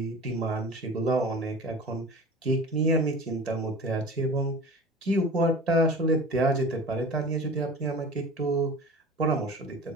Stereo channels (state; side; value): normal; both; correlation 0.38